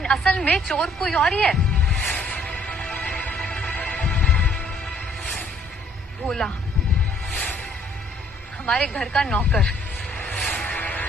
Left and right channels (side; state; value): both; normal; correlation 0.62